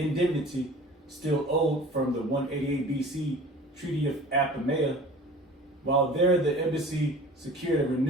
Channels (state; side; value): normal; both; correlation 0.43